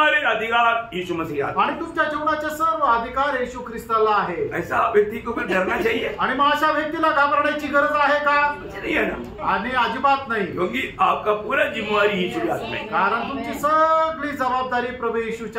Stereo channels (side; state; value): both; identical; correlation 1.00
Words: अधिकार यीशु मसीह आता है। आणि तुमच्या जीवनाचे सर्व अधिकार येशू ख्रिस्ताला आहे। ऐसा व्यक्ति को फिर डरना चाहिए? आणि मग अशा व्यक्तीला घाबरण्याची गरज आहे का? नहीं है ना, आणि अजिबात नाही, क्योंकि आपका पूरा जिम्मेवारी यीशु के हाथ में है। कारण तुमची सगळी जबाबदारी प्रभू